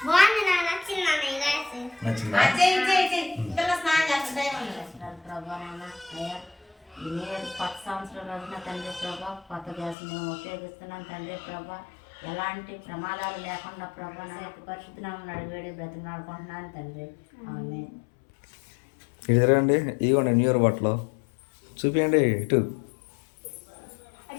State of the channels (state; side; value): drops out; right; at 10.0 s